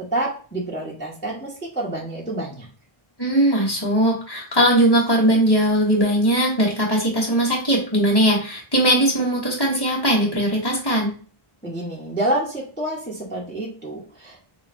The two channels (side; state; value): right; late; 1.1 ms